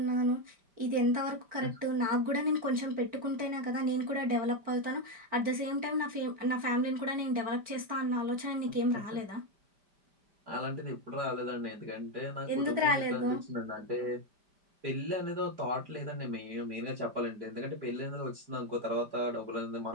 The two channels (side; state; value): left; late; 5.0 ms